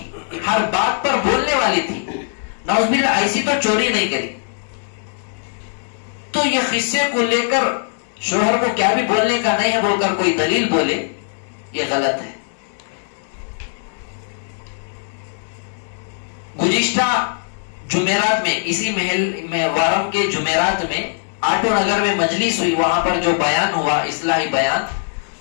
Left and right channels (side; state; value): right; silent; digital silence